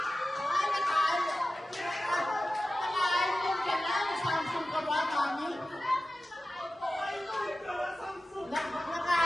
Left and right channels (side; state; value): both; normal; correlation 0.95